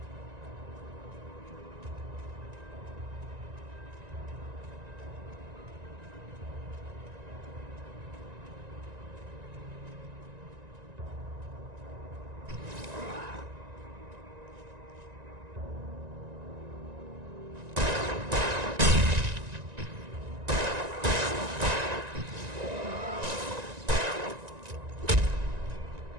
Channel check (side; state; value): left; late; 1.9 ms